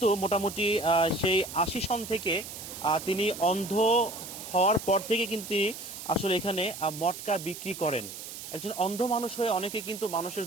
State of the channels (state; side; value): noise; right; hiss, 11 dB below the sound